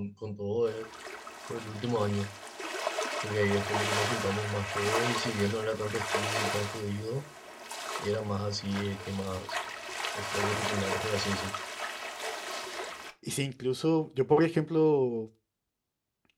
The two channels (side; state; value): both; identical; correlation 1.00